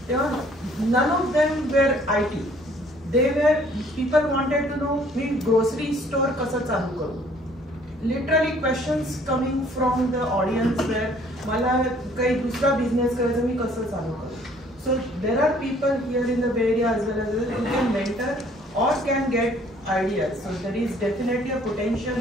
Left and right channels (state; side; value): normal; both; correlation 0.59